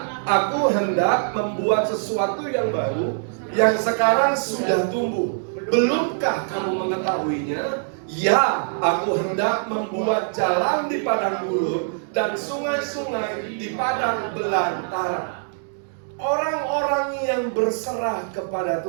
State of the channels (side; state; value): left; silent; digital silence